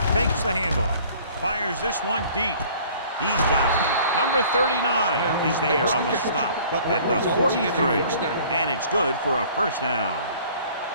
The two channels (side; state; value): both; inverted; correlation -0.52